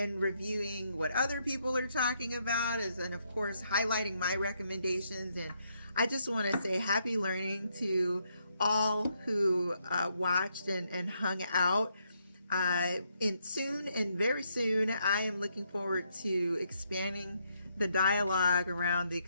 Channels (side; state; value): both; inverted; correlation -0.76